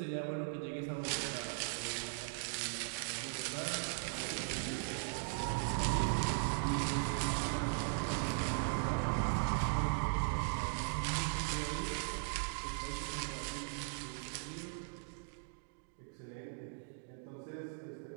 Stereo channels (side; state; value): left; silent; digital silence